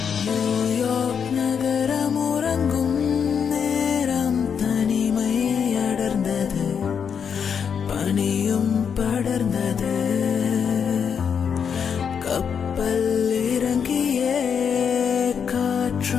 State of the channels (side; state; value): right; quieter; 7.0 dB